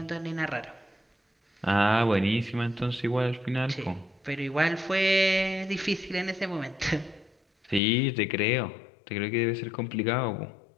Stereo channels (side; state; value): right; drops out; at 7.8 s